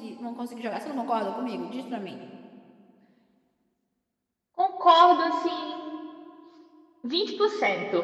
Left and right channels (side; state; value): both; identical; correlation 1.00